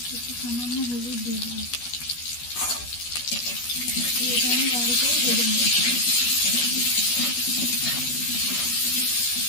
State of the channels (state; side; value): late; right; 12 ms